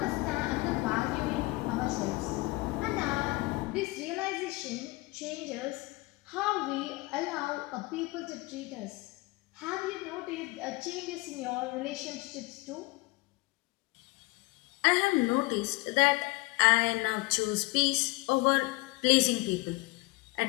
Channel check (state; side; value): quieter; right; 23.1 dB